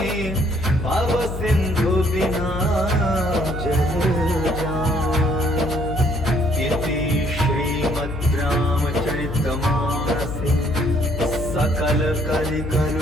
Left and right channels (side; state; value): left; noise; hum, 7 dB below the sound